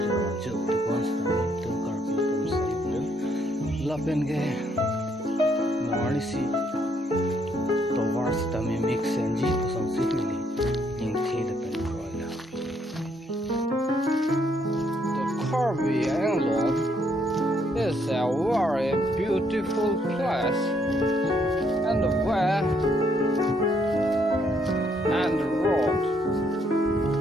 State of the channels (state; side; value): normal; both; correlation 0.71